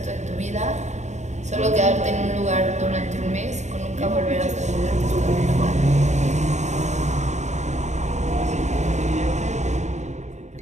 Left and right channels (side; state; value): left; late; 0.34 ms